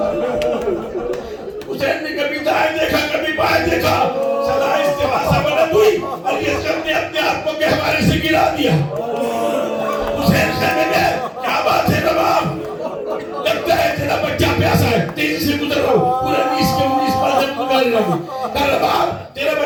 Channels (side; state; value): both; identical; correlation 1.00